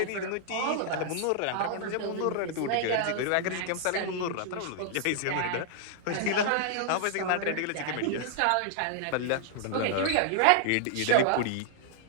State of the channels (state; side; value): different; both; correlation -0.01